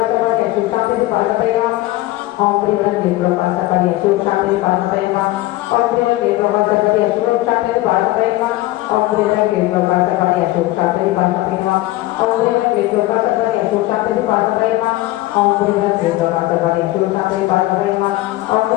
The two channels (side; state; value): right; quieter; 17.7 dB